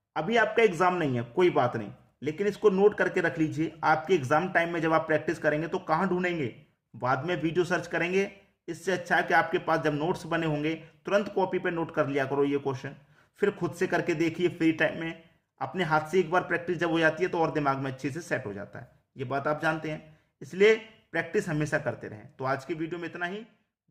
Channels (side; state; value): both; identical; correlation 1.00